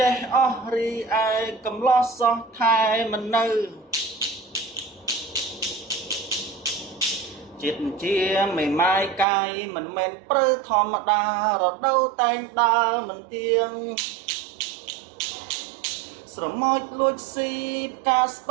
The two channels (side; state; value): left; drops out; at 9.2 s